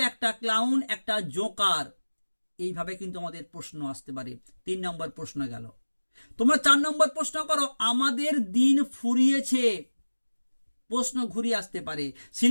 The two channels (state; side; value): inverted; both; correlation -1.00